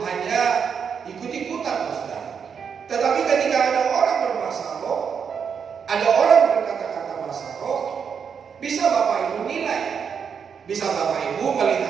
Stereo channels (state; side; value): quieter; left; 6.8 dB